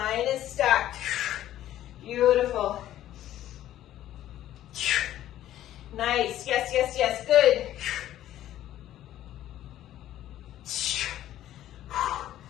is stacked. Beautiful. Nice, yes, yes, yes, good.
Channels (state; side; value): quieter; right; 12.9 dB